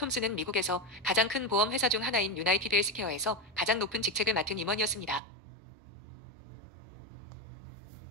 미국에서 가장 큰 보험 회사 중 하나인 유나이티드 헬스케어에서 가장 높은 직책을 맡은 임원이었습니다.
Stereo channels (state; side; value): drops out; left; at 5.2 s